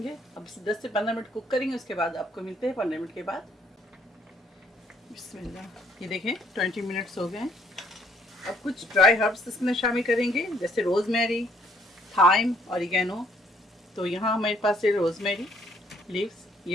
अब इसे 10 से 15 मिनट कुक करेंगे, उसके बाद आपको मिलते हैं 15 मिनट के बाद। बिस्मिल्लाह, ये देखें 20 मिनट्स हो गए हैं। अब कुछ ड्राई हर्ब्स इसमें शामिल करेंगे, जैसे रोज़मेरी, थाइम, ऑरिगेनो। तो यहाँ हमारे पास है रोज़मेरी लीव्स,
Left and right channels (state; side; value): normal; both; correlation 0.65